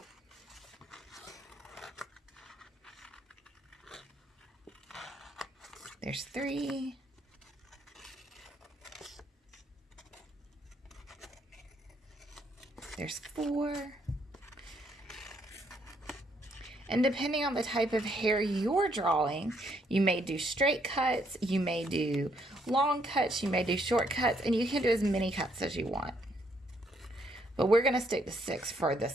There's 3. There's 4. And depending on the type of hair you're drawing, you may do straight cuts, you may do long cuts, you may do short cuts, and you can do as many cuts as you want. But we're going to stick to 6 for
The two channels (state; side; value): normal; both; correlation 0.71